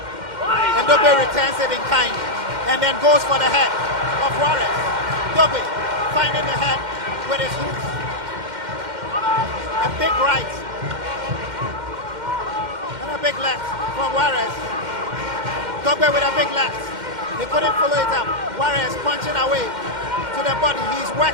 And Dogboe returns it in kind. And then goes for the head of Juarez. Dogboe finding the head with his hooks. A big right. And a big left from Juarez. Dogboe with a big left. He couldn't follow it up. Juarez punching away to the body. He's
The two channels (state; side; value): late; left; 2.1 ms